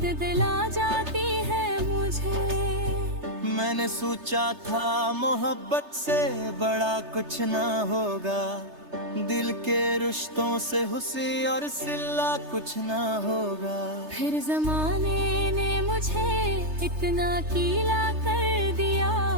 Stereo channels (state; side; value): late; left; 3.3 ms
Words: दिला जाती है मुझे। मैंने सोचा था मोहब्बत से बड़ा कुछ ना होगा, दिल के रिश्तों से हुस्न और सिला कुछ ना होगा। फिर जमाने ने मुझे इतना कीला कर दिया,